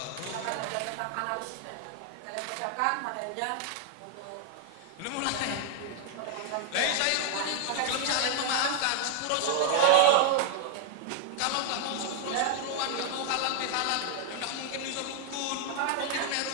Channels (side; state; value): both; different; correlation -0.01